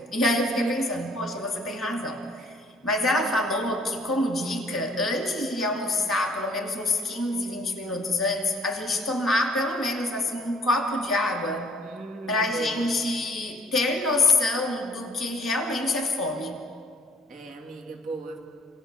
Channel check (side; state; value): both; normal; correlation 0.61